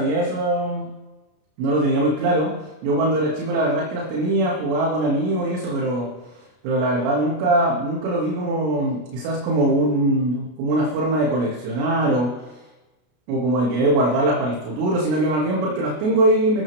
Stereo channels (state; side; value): late; left; 33 ms